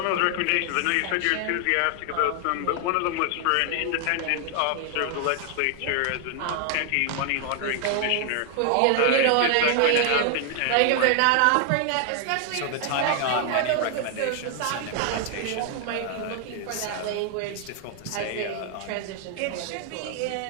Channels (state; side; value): different; both; correlation 0.00